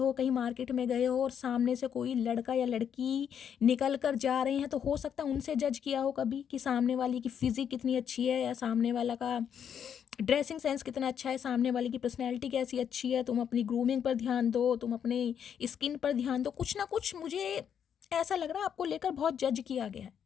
कहीं मार्केट में गए हो और सामने से कोई लड़का या लड़की निकल कर जा रहे हैं, तो हो सकता है उनसे जज किया हो कभी कि सामने वाली की फिजिक कितनी अच्छी है, या सामने वाला का ड्रेसिंग सेंस कितना अच्छा है, सामने वाले की पर्सनैलिटी कैसी अच्छी है, तुम अपनी ग्रूमिंग पर ध्यान दो, तुम अपने स्किन पर ध्यान दो। कुछ ना कुछ मुझे ऐसा लग रहा है आपको लेकर बहुत जज किया गया है,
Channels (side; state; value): right; quieter; 8.3 dB